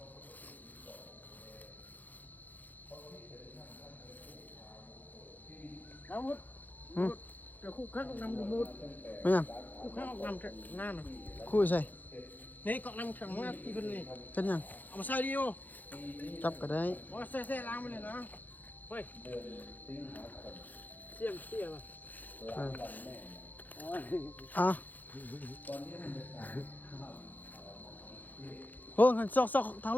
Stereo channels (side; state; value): right; late; 0.084 ms